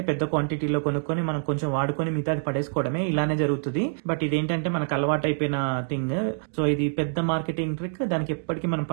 పెద్ద క్వాంటిటీలో కొనుక్కొని మనం కొంచెం వాడుకొని మిగతాది పడేసుకోవడమే, ఇలానే జరుగుతుంది. బట్ ఇదేంటంటే మనకు అలవాటు అయిపోయిన థింగ్. సో ఇది పెద్ద మార్కెటింగ్ ట్రిక్, దానికి ఎప్పటికీ మనం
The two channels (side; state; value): left; silent; digital silence